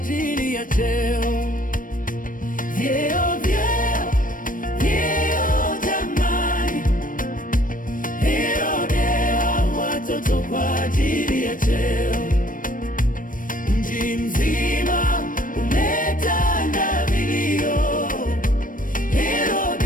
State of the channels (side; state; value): right; late; 0.39 ms